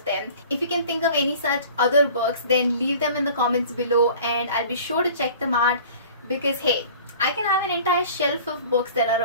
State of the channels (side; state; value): both; inverted; correlation -0.45